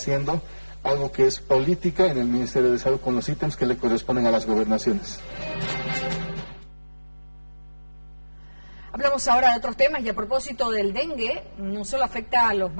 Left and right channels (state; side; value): inverted; both; correlation -1.00